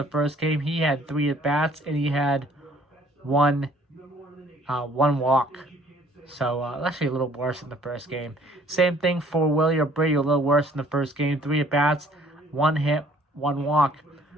first game. He had 3 at-bats and he had one walk. So, actually a little worse than the first game. Same thing for Willie Abreu, a little worse than the first game. 3 at-bats, 1 hit, 1 walk.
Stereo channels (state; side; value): normal; both; correlation 0.58